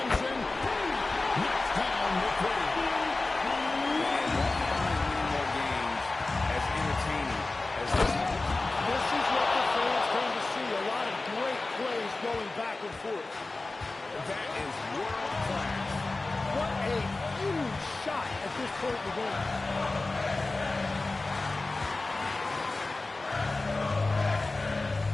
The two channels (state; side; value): quieter; right; 3.3 dB